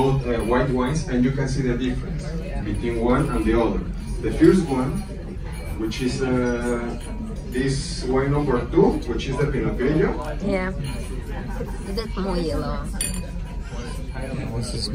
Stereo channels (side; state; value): both; identical; correlation 1.00